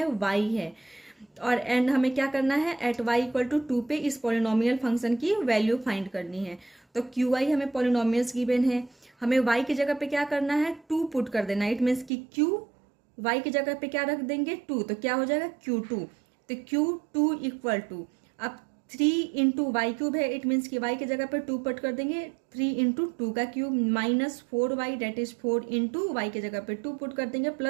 y है। और एंड हमें क्या करना है, एट y इक्वल टू 2 पे इस पॉलिनोमियल फंक्शन की वैल्यू फाइंड करनी है। तो Qy हमें पॉलिनोमियल्स गिवन है, हमें y की जगह पे क्या करना है, 2 पुट कर देना है। इट मीन्स कि Q y की जगह पे क्या रख देंगे, 2, तो क्या हो जाएगा Q2। तो Q2 इक्वल टू, अब 3 इंटू वाई क्यूब है। इट मीन्स कि y की जगह पे 2 पुट कर देंगे, 3 इंटू 2 का cube minus 4y that is 4 into y की जगह पे 2 पुट कर देंगे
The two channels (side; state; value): left; drops out; at 12.1 s